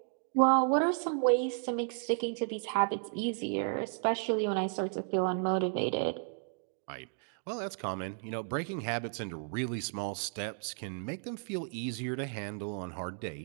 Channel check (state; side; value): silent; left; 55 dB below the other